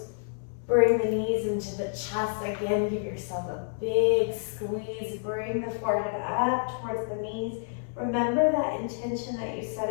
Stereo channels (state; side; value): silent; right; 59 dB below the other